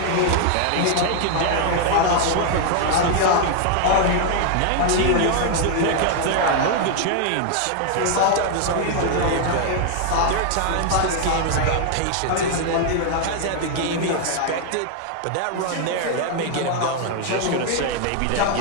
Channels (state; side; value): different; both; correlation 0.00